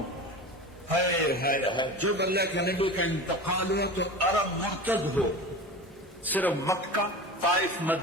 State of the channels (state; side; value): normal; both; correlation 0.31